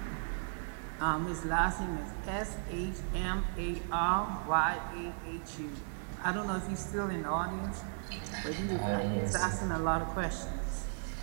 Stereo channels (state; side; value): silent; left; digital silence